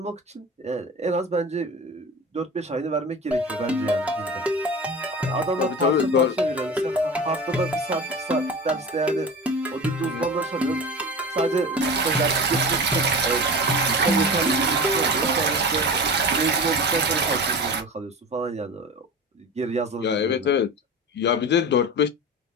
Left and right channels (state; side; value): normal; both; correlation 0.32